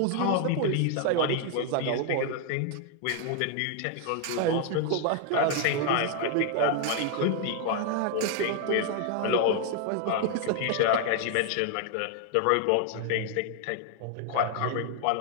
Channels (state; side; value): different; both; correlation 0.00